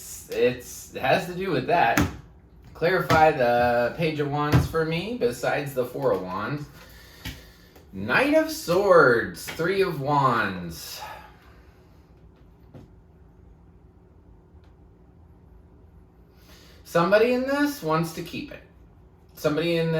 has to do with that. Clarify the Page of Wands for me, besides the Four of Wands. Knight of Swords, Three of Wands. Somebody in this wants to keep it. Somebody in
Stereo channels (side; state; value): both; identical; correlation 1.00